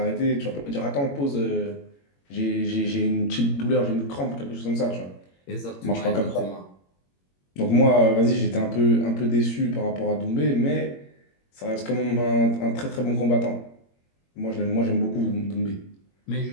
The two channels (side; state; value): right; late; 21 ms